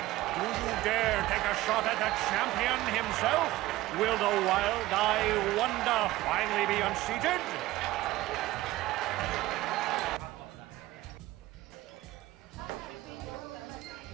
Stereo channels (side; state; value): left; quieter; 17.2 dB